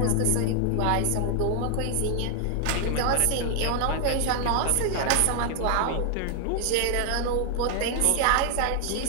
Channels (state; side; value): different; both; correlation 0.00